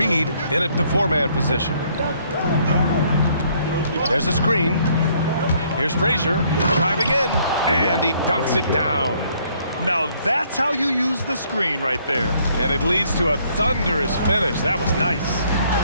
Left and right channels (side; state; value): both; inverted; correlation -0.65